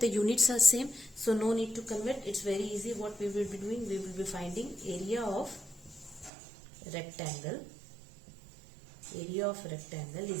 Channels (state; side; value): drops out; left; at 6.3 s